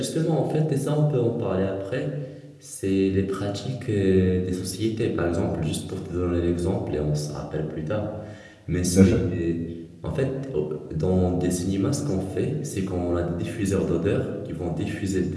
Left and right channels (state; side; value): identical; both; correlation 1.00